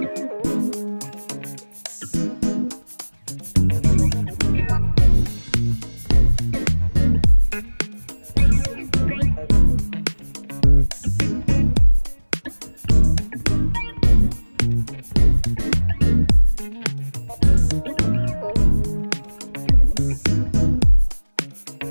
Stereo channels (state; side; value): inverted; both; correlation -1.00